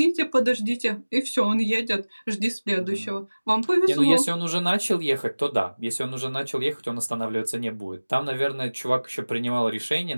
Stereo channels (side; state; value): both; inverted; correlation -1.00